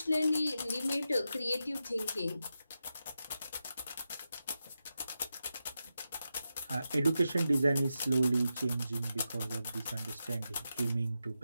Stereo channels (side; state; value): both; inverted; correlation -0.89